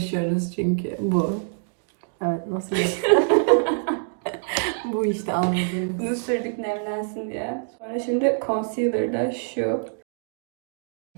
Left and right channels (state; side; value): silent; left; digital silence